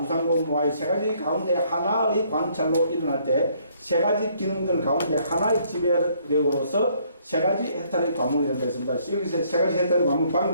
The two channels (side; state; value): both; inverted; correlation -0.66